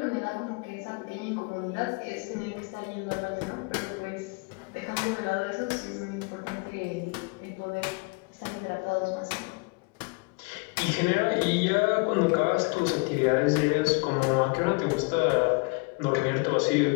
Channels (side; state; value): right; quieter; 30.3 dB